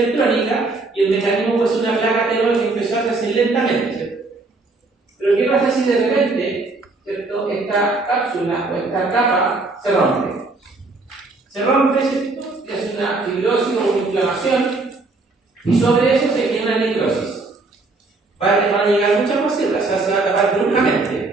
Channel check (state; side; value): quieter; left; 3.4 dB